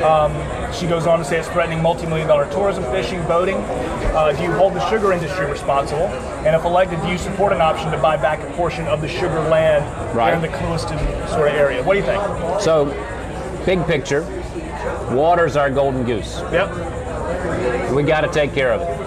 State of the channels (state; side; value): identical; both; correlation 1.00